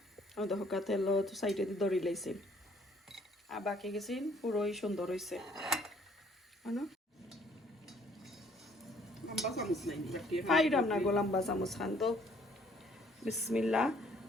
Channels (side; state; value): both; normal; correlation 0.61